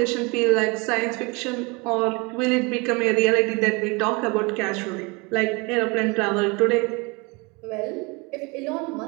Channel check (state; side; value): quieter; left; 27.9 dB